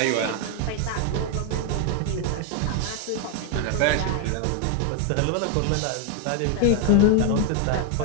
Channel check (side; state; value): both; different; correlation 0.01